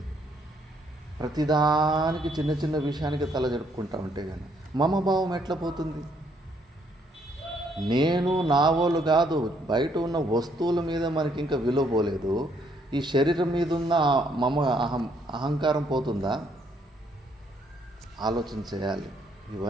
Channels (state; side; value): normal; both; correlation 0.70